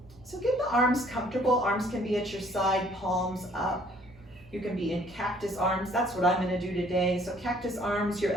So get the arms comfortable. Arms can be at your side, palms up. You can be in cactus arms. That's what I'm gonna do today. So cactus arms, your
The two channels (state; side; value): normal; both; correlation 0.60